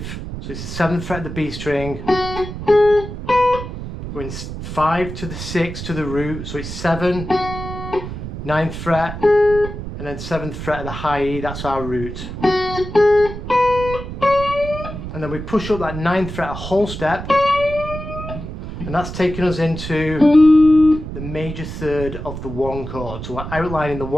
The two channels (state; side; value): noise; right; rumble, 8 dB below the sound